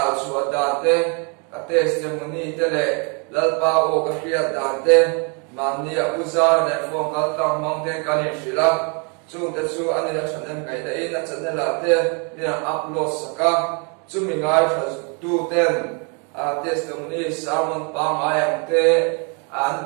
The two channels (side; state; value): left; quieter; 35.7 dB